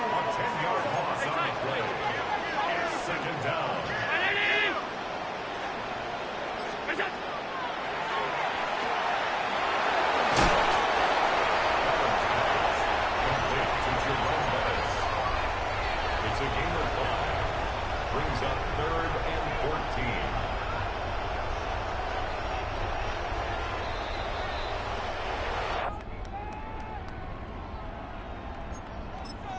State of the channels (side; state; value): both; identical; correlation 1.00